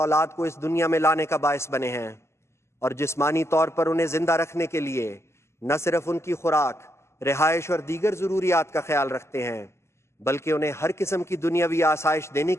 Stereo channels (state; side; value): late; right; 0.13 ms